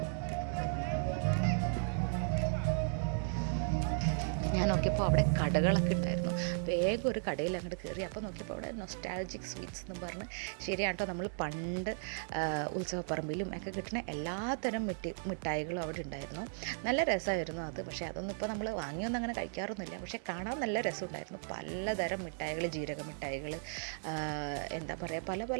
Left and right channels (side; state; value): left; silent; 54 dB below the other